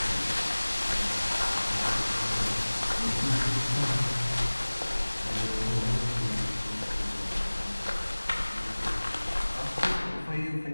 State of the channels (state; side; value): inverted; both; correlation -1.00